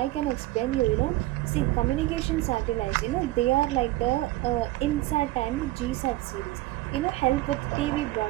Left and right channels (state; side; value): quieter; left; 17.5 dB